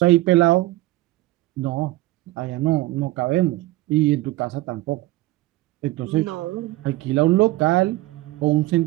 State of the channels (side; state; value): left; quieter; 18.0 dB